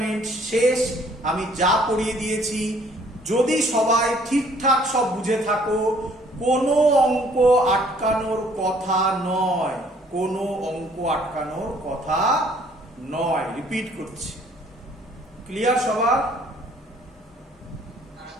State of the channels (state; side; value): normal; both; correlation 0.60